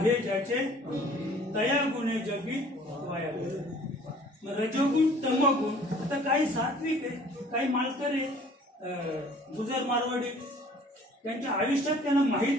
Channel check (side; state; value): both; normal; correlation 0.52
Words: ज्याचे तया गुणे जगी वाया गेले. मग रजोगुण, तमोगुण. आता काही सात्विक आहे, काही मालकरी गुजर मारवाडी, त्यांच्या आयुष्यात त्यांना